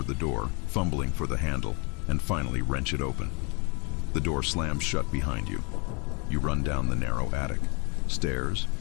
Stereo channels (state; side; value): quieter; right; 32.5 dB